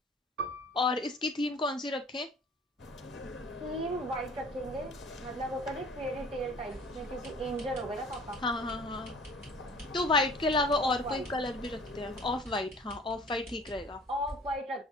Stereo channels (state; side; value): normal; both; correlation 0.48